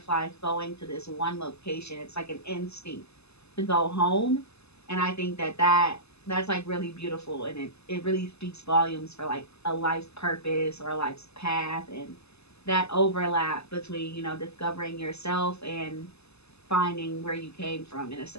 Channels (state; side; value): late; right; 0.79 ms